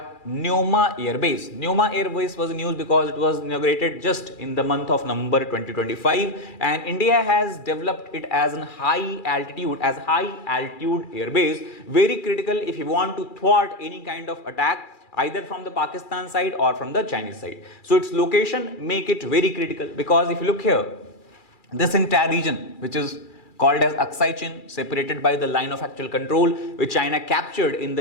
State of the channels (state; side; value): late; right; 2.4 ms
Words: Neoma Air Base. Neoma Air Base was in news because it was inaugurated just in the month of November 2025, and India has developed it as a high altitude air base, very critical if you want to thwart any kind of attack either from the Pakistan side or from the Chinese side. So its location make it very critical because if you look here, this entire region which is called as Aksai Chin, separated by the line of actual control which China captured in